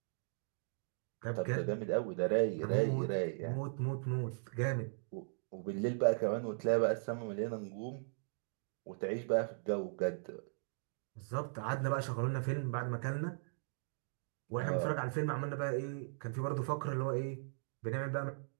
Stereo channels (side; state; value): left; silent; digital silence